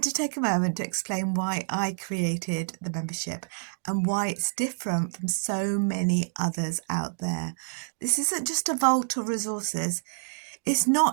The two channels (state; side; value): silent; left; digital silence